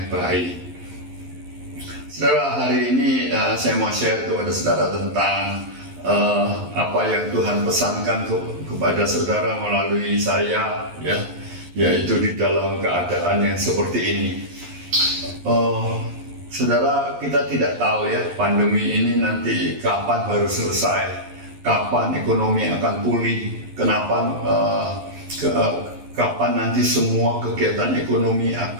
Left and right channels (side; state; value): left; late; 11 ms